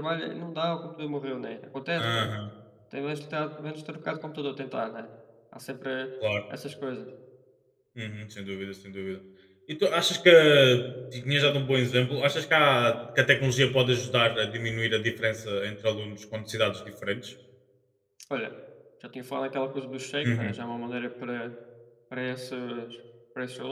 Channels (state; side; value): identical; both; correlation 1.00